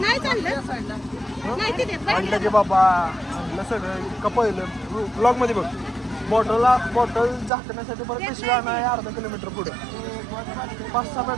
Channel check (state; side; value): drops out; left; at 7.5 s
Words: नाही चाललं नाही तिथे म्हटलं की बाबा म्हटलं सगळं इतकं पहिलं ब्लॉग मध्ये बघ बॉटल झाकण्यासाठी परत पिशवी नाही अर्धा किलोमीटर पुढे 5-6